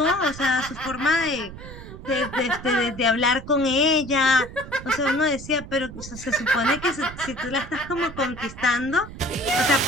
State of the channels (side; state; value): right; noise; rumble, 13 dB below the sound